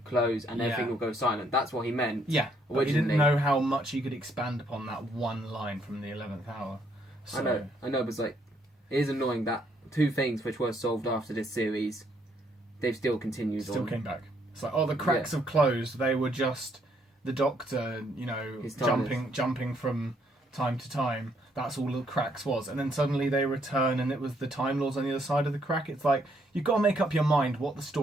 close and everything will go silent. That's what he meant. Yeah, but he didn't know how much he could expand upon that one line from the 11th Hour. So, I know, but it is annoying that 2 things which were solved after this series, they've still continued. Still came back. It's like, the cracks have closed. They were just the Doctor, jumping from time to time. That's all the cracks was. And then suddenly they return and it was the Time Lords on the other side of the crack. It's like, you've got to make up your mind what the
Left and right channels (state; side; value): normal; both; correlation 0.71